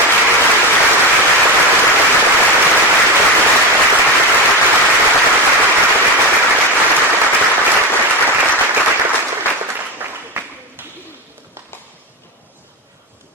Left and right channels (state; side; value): normal; both; correlation 0.19